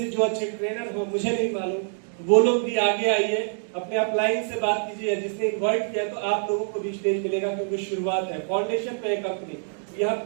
जो अच्छे ट्रेनर हो, मुझे नहीं मालूम, वो लोग भी आगे आइए, अपने अपलाइन से बात कीजिए, जिसने इन्वाइट किया तो आप लोगों को भी स्टेज मिलेगा, क्योंकि शुरुआत है, फाउंडेशन पे है कंपनी, यहाँ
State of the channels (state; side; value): silent; left; digital silence